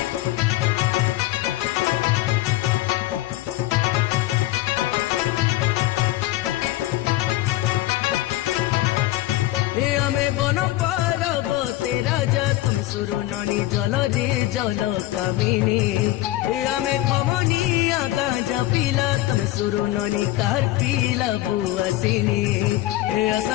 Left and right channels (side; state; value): right; quieter; 16.3 dB